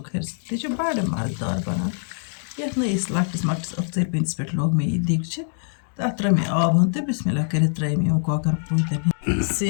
تہِ چھِ بَڑٕ مَزٕدار بَنان. یَتھ نہٕ أسۍ لۄکٹِس مۄکٹِس ٲخژَرِ پیٖنتِس پٮ۪ٹھ لوگ مےٚ یہِ دیٖگچہِ تَتھ ترٛٲے مےٚ آب ہُن تہٕ بِسمِلّہ کٔرِتھ ترٛٲے مےٚ یِم کۄکَر پوٗتٮ۪ن ہِنٛدۍ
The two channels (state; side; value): silent; right; 63 dB below the other